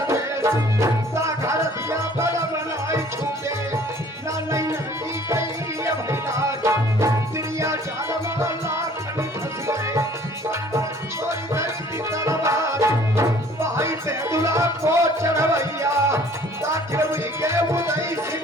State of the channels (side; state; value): both; normal; correlation 0.54